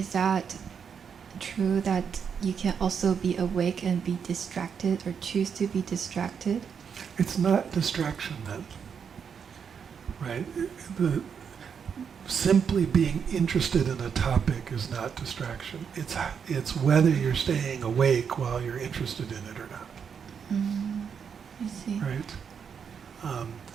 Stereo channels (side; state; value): left; quieter; 6.9 dB